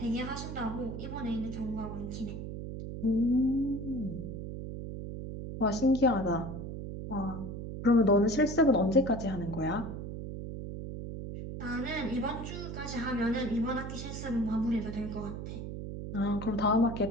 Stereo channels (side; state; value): right; noise; hum, 7 dB below the sound